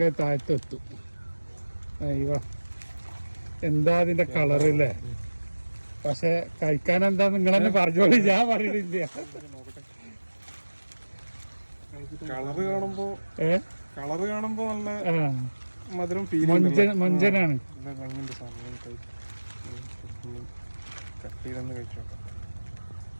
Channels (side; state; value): both; inverted; correlation -1.00